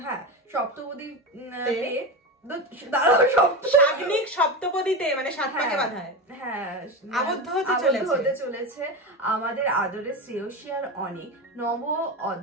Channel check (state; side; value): normal; both; correlation 0.20